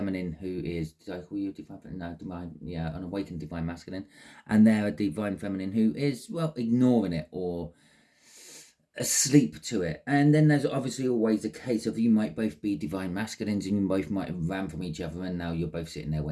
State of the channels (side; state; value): both; identical; correlation 1.00